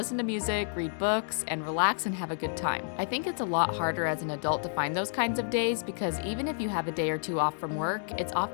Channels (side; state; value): right; silent; digital silence